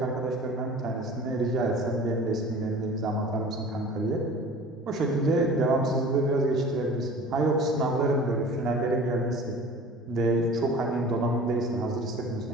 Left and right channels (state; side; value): normal; both; correlation 0.42